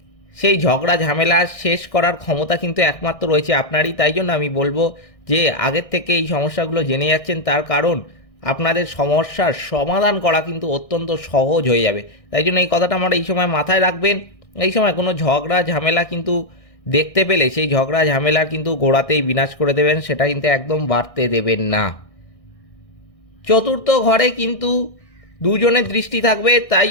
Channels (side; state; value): right; late; 1.6 ms